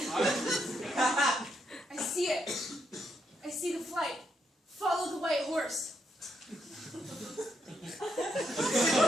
I see it. I see the flight. Follow the white horse.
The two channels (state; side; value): normal; both; correlation 0.79